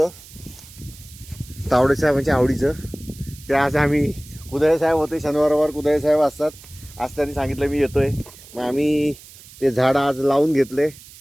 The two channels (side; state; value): right; noise; hiss, 20 dB below the sound